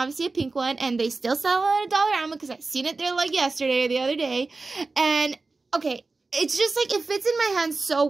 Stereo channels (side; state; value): left; quieter; 3.7 dB